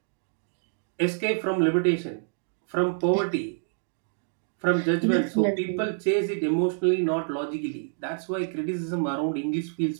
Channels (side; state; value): left; silent; digital silence